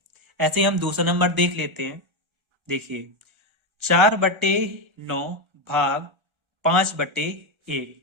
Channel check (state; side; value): late; left; 1.3 ms